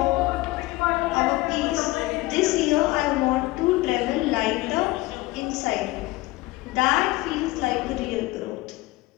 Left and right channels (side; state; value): right; quieter; 20.1 dB